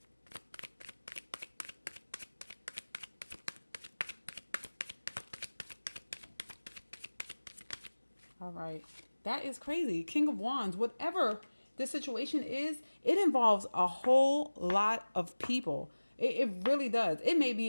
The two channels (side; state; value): both; inverted; correlation -1.00